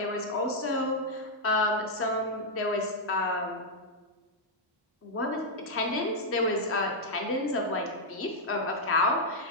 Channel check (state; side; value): normal; both; correlation -0.04